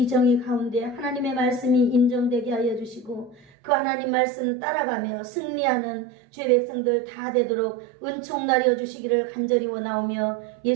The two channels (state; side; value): drops out; left; at 3.5 s